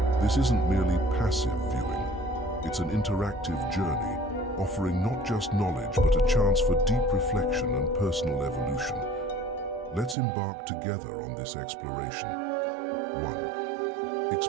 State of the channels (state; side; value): drops out; left; at 10.2 s